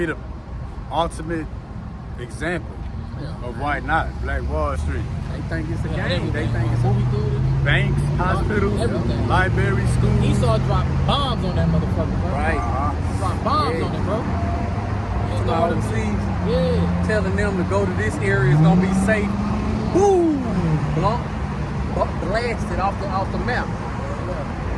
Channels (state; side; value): identical; both; correlation 1.00